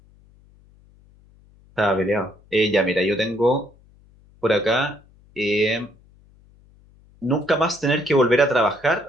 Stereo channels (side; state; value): left; noise; hum, 29 dB below the sound